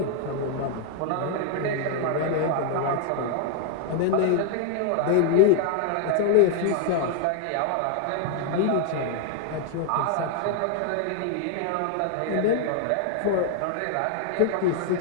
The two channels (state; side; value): different; both; correlation 0.00